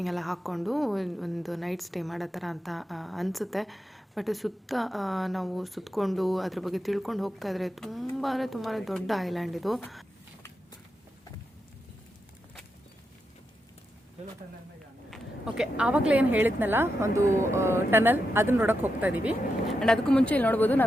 ಎಲ್ಲ ಹಾಕ್ಕೊಂಡು ಒಂದು ನೈಟ್ ಸ್ಟೇ ಮಾಡೋ ಥರ ಅಂತ ಅನಿಸುತ್ತೆ. ಬಟ್ ಸುತ್ತ ನಾವು ಸುತ್ತಕೊಂಡು ಅದ್ರ ಬಗ್ಗೆ ತಿಳ್ಕೊಂಡು ಹೋಗ್ತಾ ಇದ್ರೆ ತುಂಬಾ ದೊಡ್ಡ ಐಲ್ಯಾಂಡ್ ಇದು. ಓಕೆ, ಆವಾಗಲೇ ಏನು ಹೇಳಿದ್ನಲ್ಲ ಒಂದು ಟನಲ್, ಅದನ್ನ ನೋಡೋಕೆ ಹೋಗ್ತಾ ಇದ್ದೀವಿ. ಆ್ಯಂಡ್ ಅದಕ್ಕೂ ಮುಂಚೆ ಇಲ್ಲಿ ನೋಡ್ಬೋದು,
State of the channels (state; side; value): normal; both; correlation 0.86